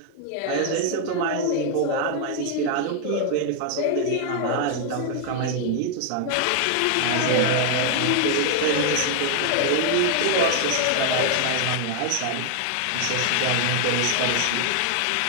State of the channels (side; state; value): both; different; correlation 0.00